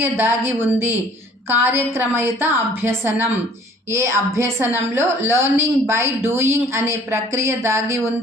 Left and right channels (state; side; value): normal; both; correlation 0.55